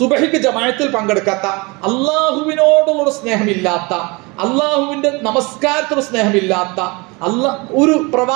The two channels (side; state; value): left; quieter; 26.7 dB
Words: ജമാഅത്തിൽ പങ്കെടുക്കാത്ത, അള്ളാഹുവിനോടുള്ള സ്നേഹമില്ലാത്ത, അള്ളാഹുവിന്റെ നമസ്കാരത്തോട് സ്നേഹമില്ലാത്ത ഒരു